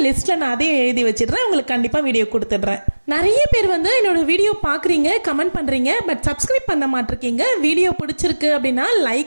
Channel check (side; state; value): both; inverted; correlation -1.00